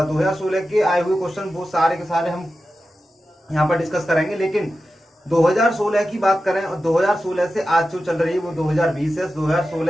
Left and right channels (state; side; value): normal; both; correlation 0.92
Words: 2016 के आए हुए क्वेश्चन वो सारे के सारे हम यहाँ पर डिस्कस करेंगे। लेकिन 2016 की बात करें और 2016 से आज जो चल रही है वो 2020 है।